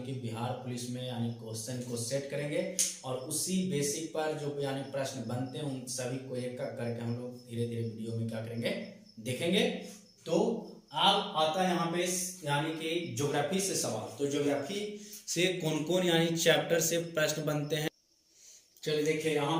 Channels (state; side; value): identical; both; correlation 1.00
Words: कि बिहार पुलिस में यानी क्वेश्चन को सेट करेंगे और उसी बेसिक पर जो यानी प्रश्न बनते हैं उन सभी को एक एक करके हम लोग धीरे धीरे वीडियो में क्या करेंगे, देखेंगे। तो अब आता है यहाँ पे यानी कि ज्योग्राफी से सवाल। तो ज्योग्राफी से कौन कौन यानी चैप्टर से प्रश्न बनते हैं, चलिए देखिए। यहाँ